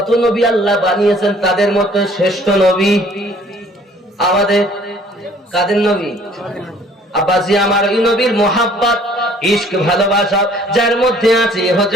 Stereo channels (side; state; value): both; normal; correlation 0.56